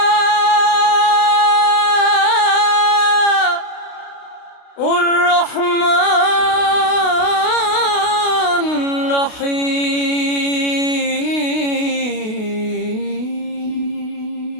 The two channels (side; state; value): right; late; 32 ms